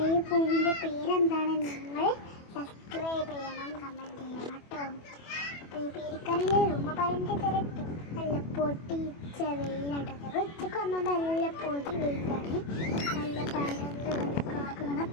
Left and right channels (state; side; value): late; right; 25 ms